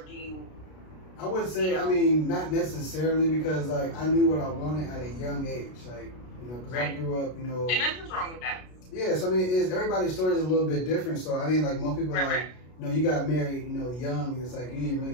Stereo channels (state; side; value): late; right; 33 ms